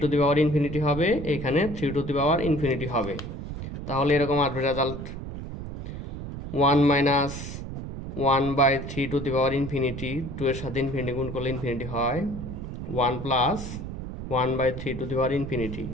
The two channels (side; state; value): right; noise; rumble, 8 dB below the sound